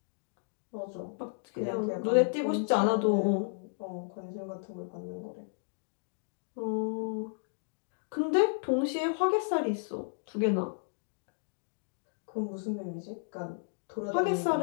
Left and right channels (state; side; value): silent; right; digital silence